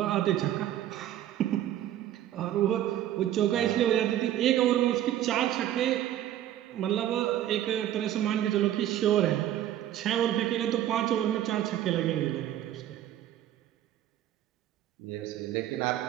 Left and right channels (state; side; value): quieter; left; 12.2 dB